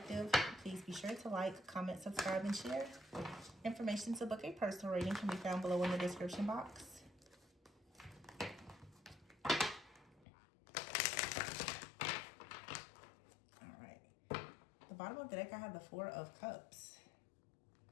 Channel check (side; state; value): right; drops out; at 10.2 s